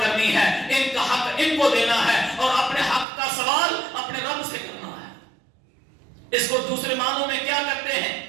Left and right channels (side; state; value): left; drops out; at 3.1 s